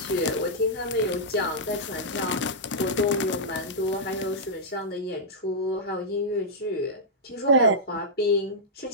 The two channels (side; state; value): both; normal; correlation -0.10